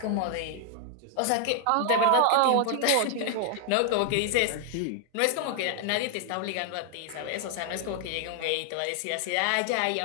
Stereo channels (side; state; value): both; different; correlation 0.00